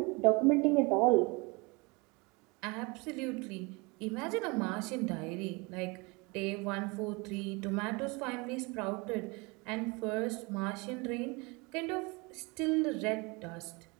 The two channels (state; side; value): quieter; left; 27.5 dB